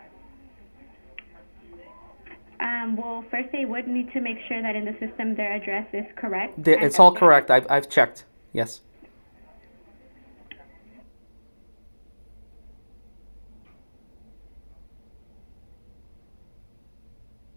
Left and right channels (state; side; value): inverted; both; correlation -1.00